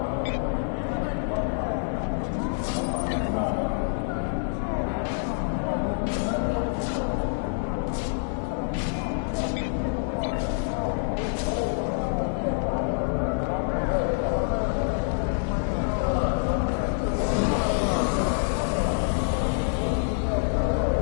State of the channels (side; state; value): right; silent; digital silence